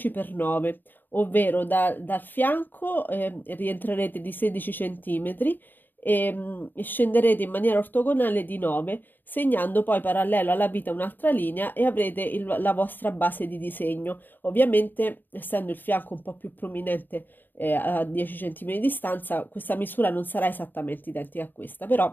x 9, ovvero dal fianco rientrerete di 16 cm e scenderete in maniera ortogonale di 9, segnando poi parallelo alla vita un'altra linea e avrete la vostra base di disegno. Ovviamente, essendo il fianco un po' più prominente a 10 cm di distanza, questa misura non sarà esattamente identica a questa,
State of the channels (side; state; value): right; late; 0.091 ms